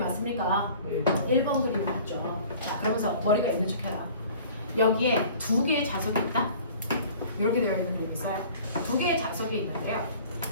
왔습니까? 1번 그림이 왔죠. 자, 그러면서 머리가 있는 척 해라. 여기에 두 개의 자석이 있다? 이렇게 되어 있는 그림이 있어요. 두 개의 자석이 있는데요.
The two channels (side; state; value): both; inverted; correlation -0.47